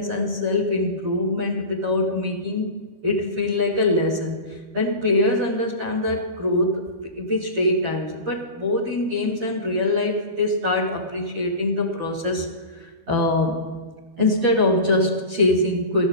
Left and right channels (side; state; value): left; late; 13 ms